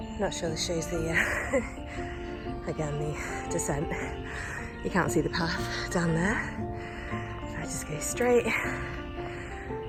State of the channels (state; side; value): identical; both; correlation 1.00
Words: Not sure this shows the, again, the descent. You can't see the path down there. If I just go straight,